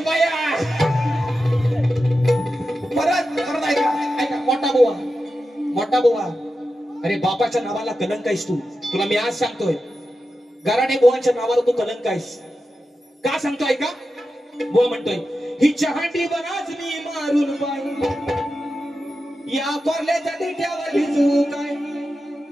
परत परत ऐका मोठा बुवा अरे बापाच्या नावाला कलंक आहेस तुला मी आज सांगतोय गराडे बुवांच्या नावाला तू कलंक आहेस का सांगतो ऐका बुवा म्हणतोय ही चहाटी बनाच मी मारून पाय या कोरल्याच्या देठ्यावर भिजू काय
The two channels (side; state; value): both; normal; correlation 0.91